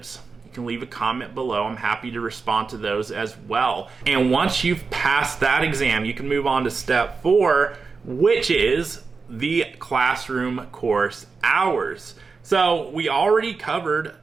you can leave a comment below. I'm happy to respond to those as well. And once you've passed that exam, you can move on to step four, which is the classroom course hours. So we already covered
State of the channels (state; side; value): quieter; left; 4.7 dB